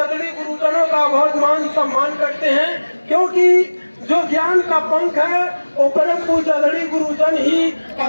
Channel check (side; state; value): both; inverted; correlation -1.00